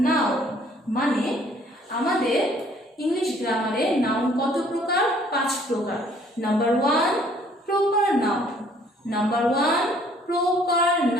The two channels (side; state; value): both; normal; correlation 0.60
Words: noun. মানে আমাদের English গ্রামারে noun কত প্রকার? 5 প্রকার। Number 1 proper noun. Number 1 proper